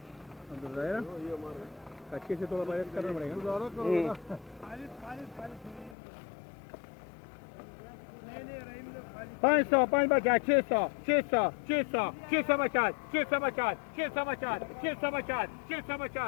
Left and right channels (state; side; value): drops out; right; at 6.0 s